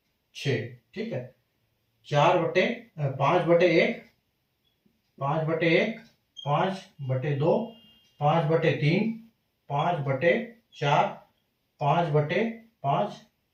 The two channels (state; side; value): identical; both; correlation 1.00